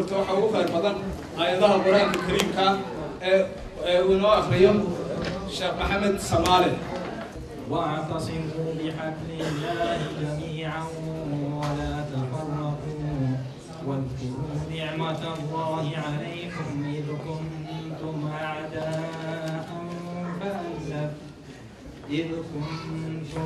waxa ugu khayr badan aayadaha quraanka kariimka uu inoo akhriyo Sheekh Maxamed Samaale. واعتصموا بحبل الله جميعا ولا تفرقوا واذكروا نعمة الله عليكم إذ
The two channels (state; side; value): identical; both; correlation 1.00